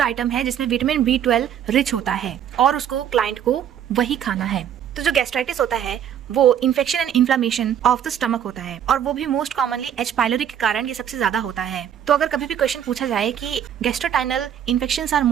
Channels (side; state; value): left; quieter; 9.6 dB